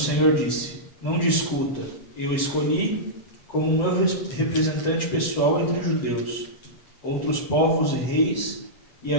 disse: não discuta, eu escolhi como meu representante pessoal entre judeus, outros povos e reis, e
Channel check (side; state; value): right; late; 7.8 ms